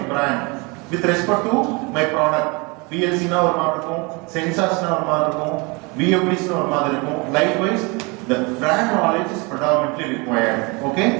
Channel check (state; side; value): quieter; left; 28.5 dB